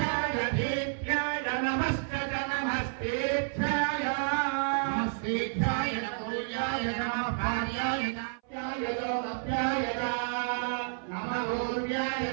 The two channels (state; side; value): silent; left; 58 dB below the other